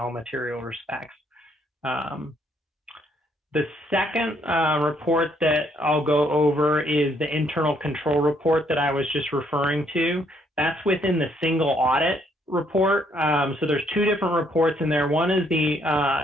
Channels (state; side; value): normal; both; correlation 0.69